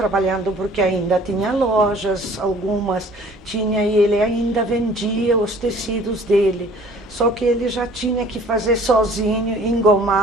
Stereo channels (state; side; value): normal; both; correlation 0.52